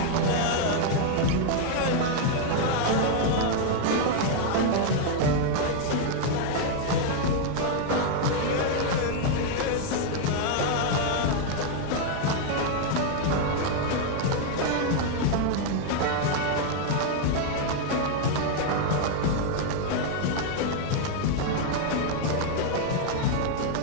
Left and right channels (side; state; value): both; different; correlation 0.00